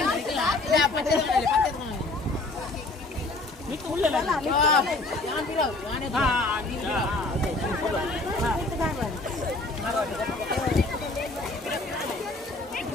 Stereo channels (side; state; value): right; quieter; 3.1 dB